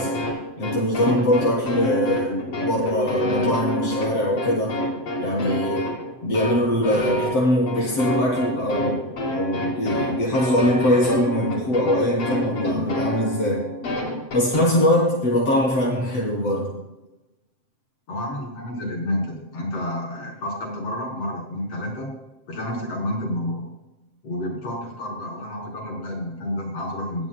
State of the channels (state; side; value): late; right; 7.7 ms